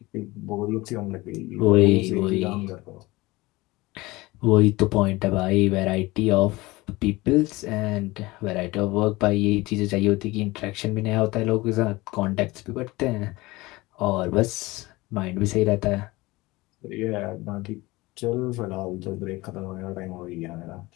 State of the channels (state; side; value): quieter; right; 21.1 dB